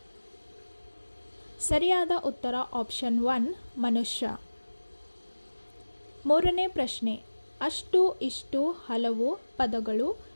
ಸರಿಯಾದ ಉತ್ತರ ಆಪ್ಷನ್ 1 ಮನುಷ್ಯ. ಮೂರನೇ ಪ್ರಶ್ನೆ, ಅಷ್ಟು ಇಷ್ಟು ಹಲವು ಪದಗಳು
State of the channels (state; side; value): inverted; both; correlation -1.00